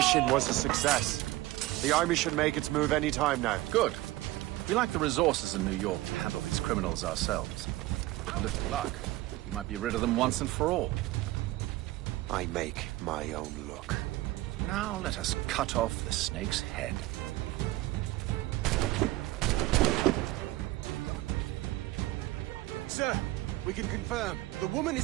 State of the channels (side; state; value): left; quieter; 18.0 dB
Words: was a success. The army should make its move any time now. Good. We lack the resources in New York to handle these criminals ourselves. With a little luck, we might be rid of them once and for all. I make my own luck. Now let us cut off the snake's head. Sir, we can confirm. The woman